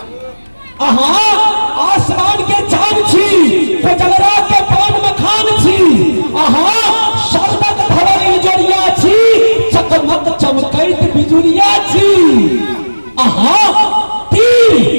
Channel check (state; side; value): inverted; both; correlation -1.00